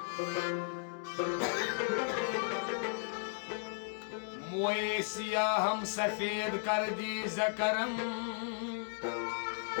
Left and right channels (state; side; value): silent; right; 54 dB below the other